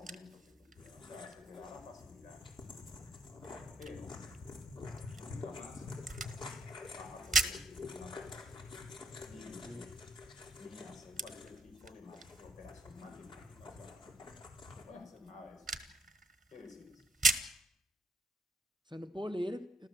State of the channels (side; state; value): both; normal; correlation 0.68